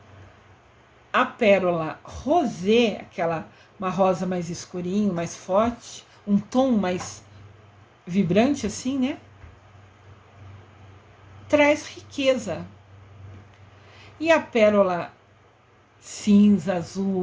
A pérola rosé, uma rosa mais escurinho, mais forte, um tom mais vibrante assim, né? Traz riqueza. E a pérola cinza,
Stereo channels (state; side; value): identical; both; correlation 1.00